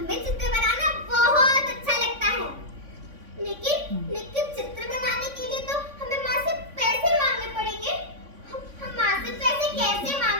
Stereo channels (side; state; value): left; late; 3.5 ms